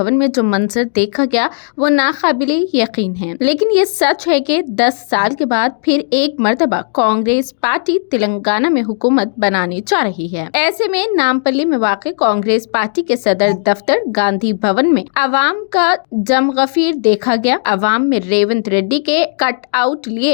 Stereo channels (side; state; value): right; silent; digital silence